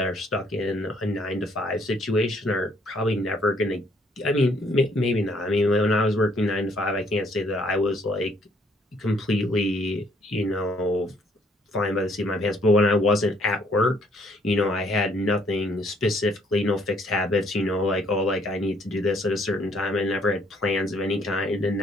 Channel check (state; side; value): normal; both; correlation 0.66